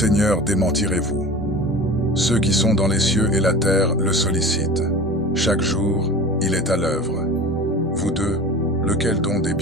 démentirez-vous? Ceux qui sont dans les cieux et la terre le sollicitent. Chaque jour, il est à l'œuvre. Vous deux, lequel donc des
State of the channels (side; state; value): both; normal; correlation 0.36